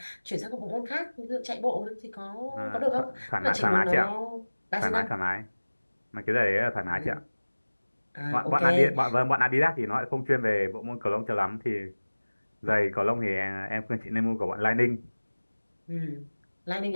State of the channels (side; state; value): both; inverted; correlation -1.00